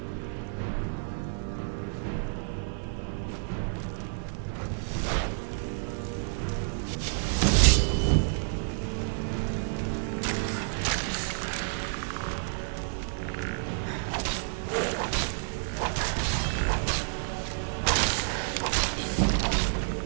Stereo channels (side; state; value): left; silent; digital silence